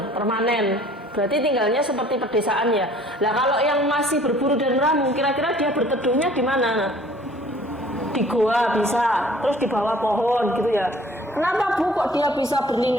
permanen. Berarti tinggalnya seperti pedesaan ya. Nah kalau yang masih berburu dan meramu, kira-kira dia berteduhnya di mana? Di goa bisa, terus di bawah pohon gitu ya. Kenapa Bu kok dia bisa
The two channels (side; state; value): both; normal; correlation 0.53